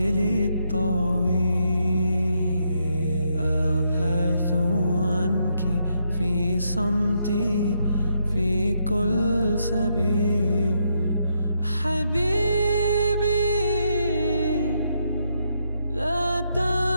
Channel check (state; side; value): inverted; both; correlation -0.78